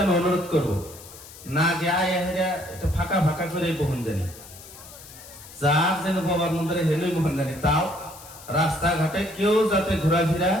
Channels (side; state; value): left; noise; hiss, 18 dB below the sound